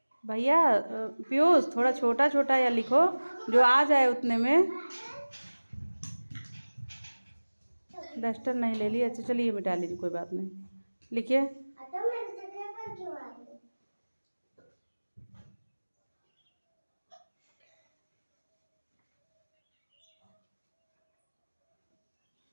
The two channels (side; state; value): both; inverted; correlation -1.00